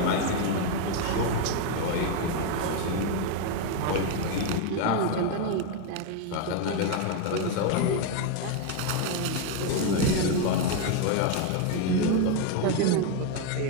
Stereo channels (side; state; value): both; different; correlation 0.01